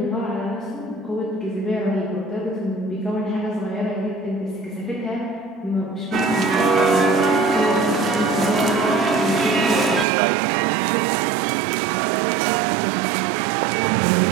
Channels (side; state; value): left; drops out; at 10.1 s